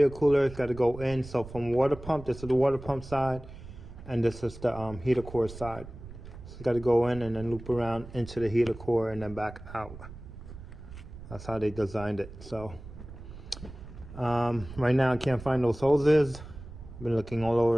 cooler. It's got to go in. So from water pump, this is the water pump side, and this is the heater core side. So it's got to go in and then loop around into the heater core and then back out. That's how they designed it. So right now I can't find those hoses. I've been looking all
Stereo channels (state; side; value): noise; right; rumble, 14 dB below the sound